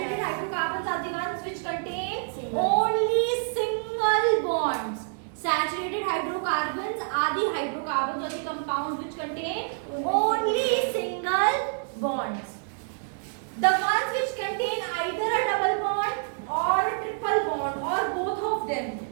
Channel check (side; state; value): left; silent; digital silence